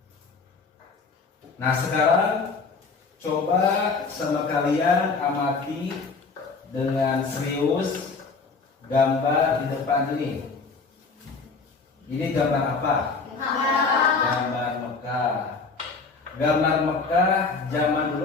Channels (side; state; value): right; quieter; 4.4 dB